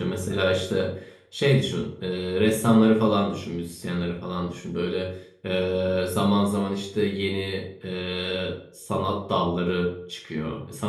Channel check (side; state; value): both; identical; correlation 1.00